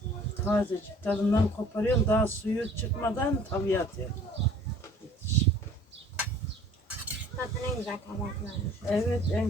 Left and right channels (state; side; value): normal; both; correlation 0.52